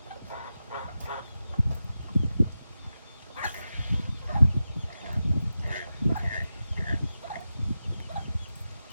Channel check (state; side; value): inverted; both; correlation -0.92